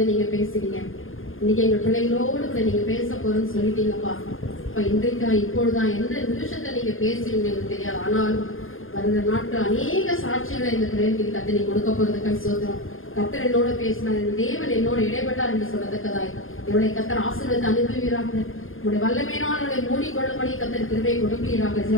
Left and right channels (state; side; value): late; right; 0.59 ms